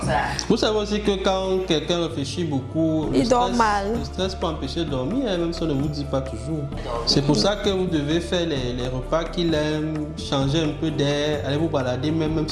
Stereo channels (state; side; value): identical; both; correlation 1.00